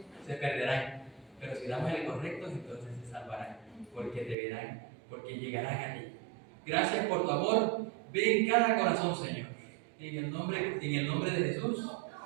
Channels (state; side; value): drops out; left; at 4.4 s